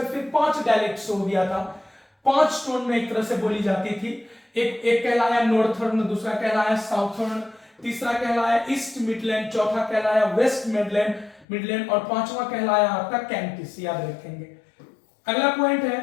फिर 5 डायलेक्ट्स हो गया था। 5 टोन में एक तरह से बोली जाती थी। एक कहलाया नॉर्थर्न, दूसरा कहलाया साउथर्न, तीसरा कहलाया ईस्ट मिडलैंड, चौथा कहलाया वेस्ट मिडलैंड और पांचवा कहलाया आपका कैंटिस, याद रखेंगे। अगला पॉइंट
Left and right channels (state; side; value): drops out; right; at 11.5 s